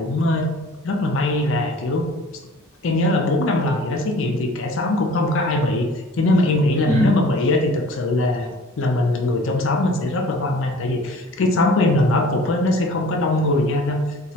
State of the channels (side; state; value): both; normal; correlation 0.47